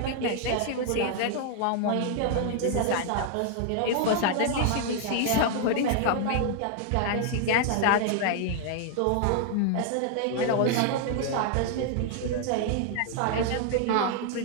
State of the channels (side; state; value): both; different; correlation 0.00